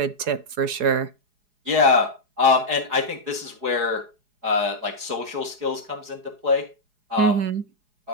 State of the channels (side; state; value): left; late; 4.8 ms